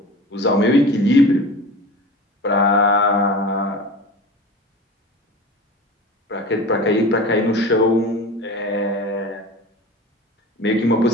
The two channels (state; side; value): normal; both; correlation 0.35